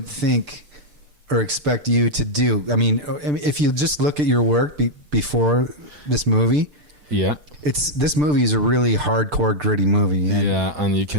think or expect you to do. I mean, if you just look at your work before this movie, this movie is a really hardcore, gritty movie, and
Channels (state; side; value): late; left; 6.8 ms